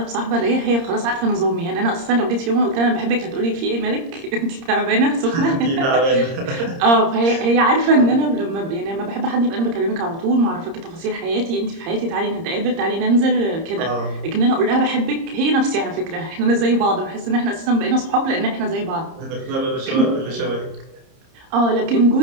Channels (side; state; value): left; late; 30 ms